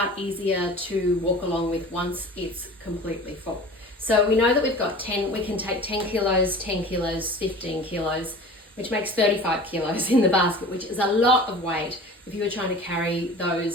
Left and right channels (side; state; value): both; normal; correlation 0.39